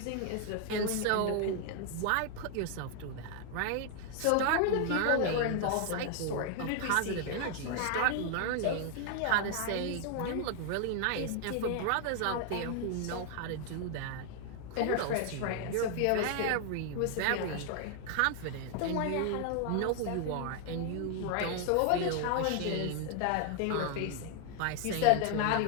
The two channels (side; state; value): both; different; correlation 0.00